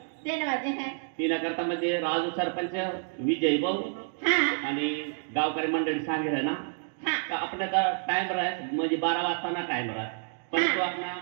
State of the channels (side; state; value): left; silent; 59 dB below the other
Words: 3 वाजे है 3 करता म्हणजे राजू सरपंच विजय भाऊ आणि गावकरी मंडळी सांगितलं ना तर आपल्याला टाइम राहत म्हणजे 12 वाजता ना टाइम राहत पण तो आपला